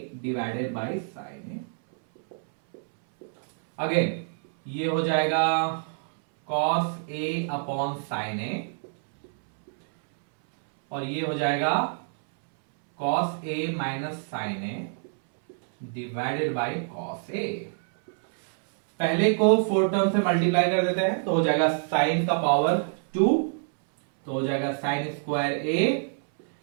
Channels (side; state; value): left; silent; 61 dB below the other